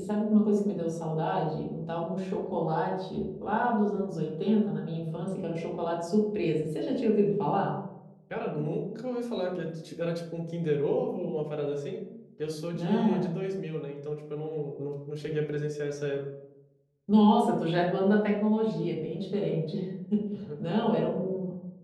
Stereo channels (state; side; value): identical; both; correlation 1.00